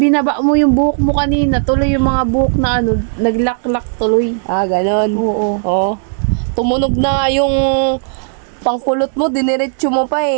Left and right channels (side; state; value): left; silent; digital silence